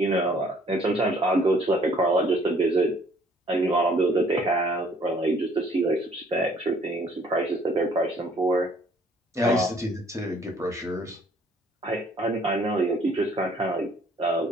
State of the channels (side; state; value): both; normal; correlation 0.60